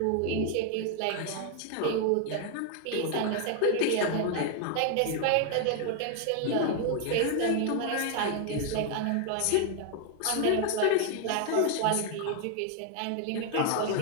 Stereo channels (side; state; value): both; different; correlation 0.00